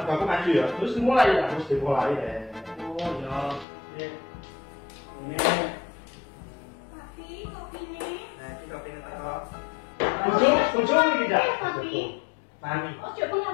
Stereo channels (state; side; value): drops out; right; at 3.7 s